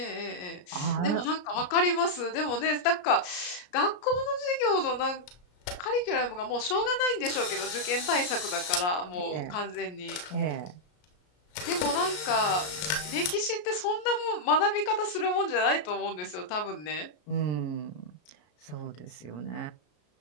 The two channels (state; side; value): late; right; 33 ms